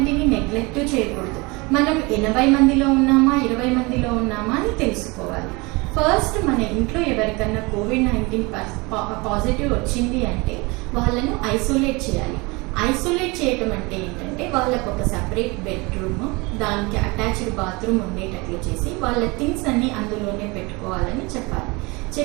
నెగ్లెక్ట్ చేయకూడదు. మనం 80 మందిలో ఉన్నామా 20 మందిలో ఉన్నామా అని తెలుసుకోవాలి. ఫస్ట్ మన ఇంట్లో ఎవరికన్నా కోవిడ్-19 పాజిటివ్ వచ్చింది అంటే వాళ్ళను ఐసోలేట్ చేయాలి. ఐసోలేట్ చేయటం అంటే ఏంటంటే వాళ్ళకు ఒక సపరేట్ బెడ్రూమ్, దానికి అటాచ్డ్ బాత్రూమ్ ఉండేటట్లు చేసి వాళ్ళ థింగ్స్ అన్నీ అందులోనే పెట్టుకోవాలని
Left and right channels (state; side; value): quieter; left; 25.8 dB